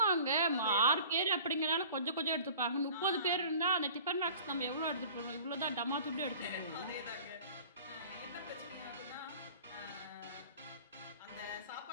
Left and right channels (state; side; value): inverted; both; correlation -0.46